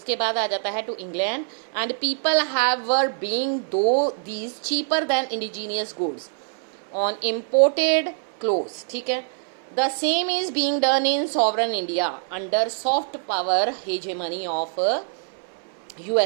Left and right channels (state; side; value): silent; left; 62 dB below the other